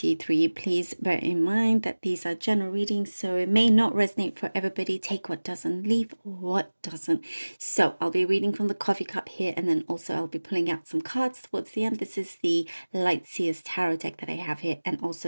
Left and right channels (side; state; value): both; inverted; correlation -1.00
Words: Please bear in mind that these are general readings, so it may not resonate for everybody. Take what doesn't, leave what doesn't. So I'll be reading from the coffee cup here, and then also I'll be pulling out some cards towards the end. This is the Light Seers Tarot deck that I have here, and